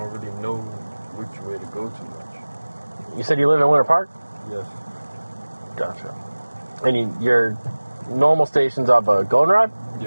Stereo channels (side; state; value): both; inverted; correlation -1.00